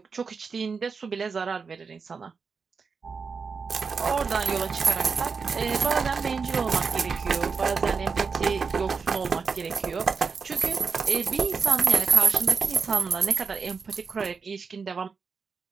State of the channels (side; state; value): left; quieter; 5.3 dB